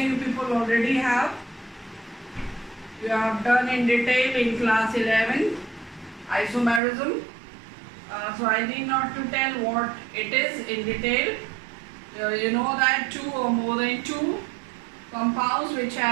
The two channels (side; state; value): left; drops out; at 6.8 s